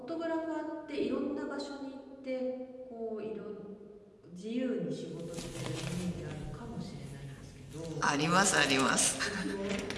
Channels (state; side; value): identical; both; correlation 1.00